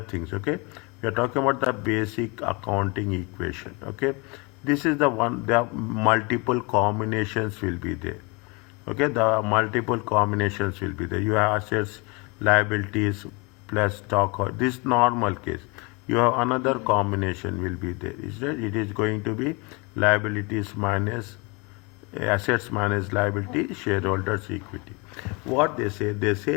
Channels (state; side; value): quieter; right; 29.0 dB